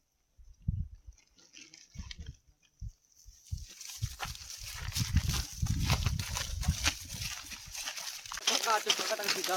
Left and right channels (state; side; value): identical; both; correlation 1.00